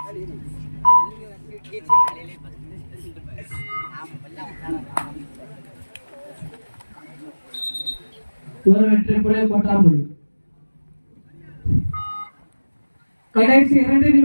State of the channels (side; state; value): both; inverted; correlation -1.00